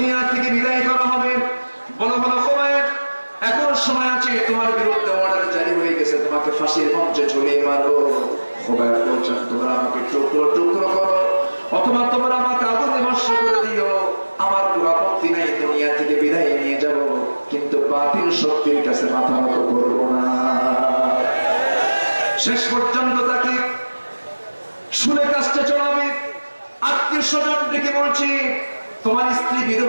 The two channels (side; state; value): both; inverted; correlation -1.00